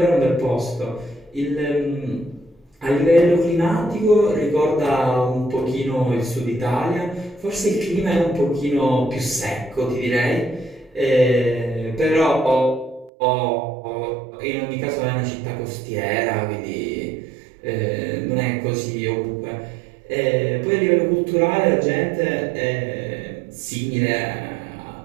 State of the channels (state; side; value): drops out; left; at 13.1 s